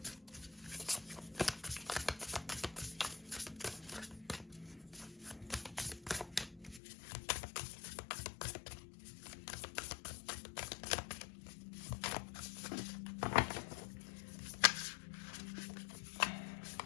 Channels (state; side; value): drops out; right; at 6.8 s